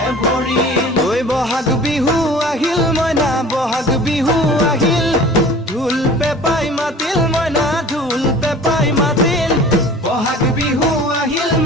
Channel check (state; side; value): normal; both; correlation 0.44